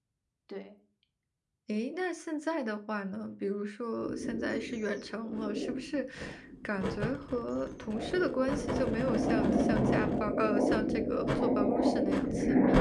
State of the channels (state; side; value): identical; both; correlation 1.00